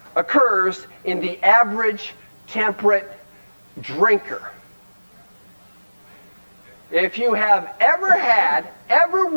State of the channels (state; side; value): inverted; both; correlation -1.00